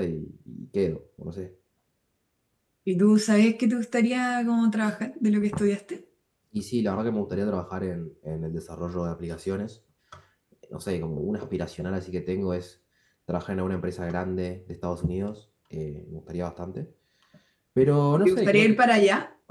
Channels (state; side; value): identical; both; correlation 1.00